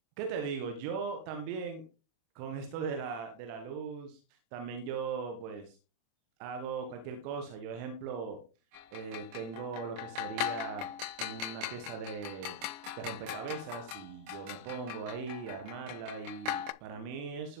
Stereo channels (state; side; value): late; left; 25 ms